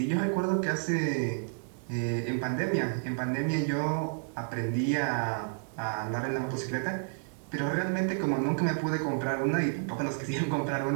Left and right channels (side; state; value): left; silent; digital silence